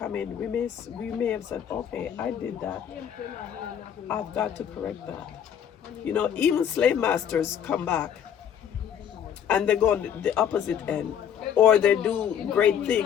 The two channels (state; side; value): quieter; right; 8.9 dB